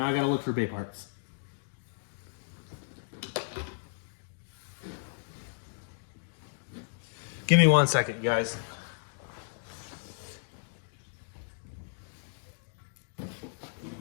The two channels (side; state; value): right; silent; digital silence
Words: I got to look for bay parts. Give me 1 second, guys.